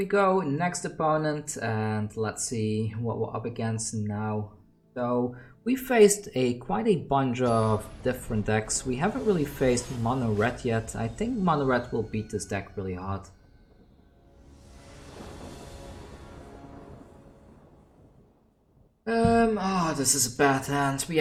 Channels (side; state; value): both; identical; correlation 1.00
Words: go, next opponent, and let's see what we're up against now. So we faced quite a bunch of different decks. We haven't really faced Mono Red yet. I think Mono Red will beat this deck really hard. Oh, this is a bad hand. We